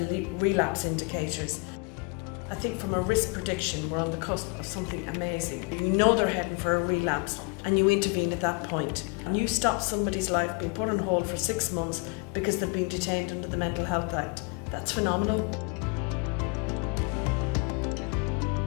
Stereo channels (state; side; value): quieter; right; 30.3 dB